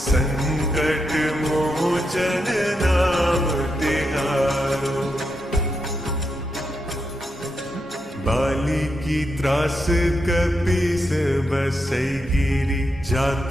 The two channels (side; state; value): both; normal; correlation 0.84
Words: संकट मोचन नाम तिहारो। बाली की त्रास कपीस बसई गिरी,